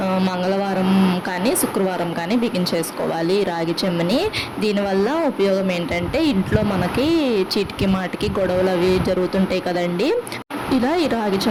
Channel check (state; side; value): identical; both; correlation 1.00